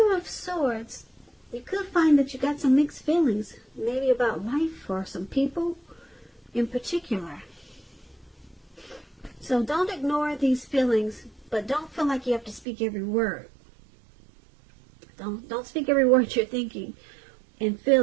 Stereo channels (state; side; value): drops out; left; at 12.7 s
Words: of Swords, you could find that you got some mixed feelings, maybe about life or some people in particular. So don't ignore these feelings, but don't feel like you have to speak every word. Don't speak every word you're thinking and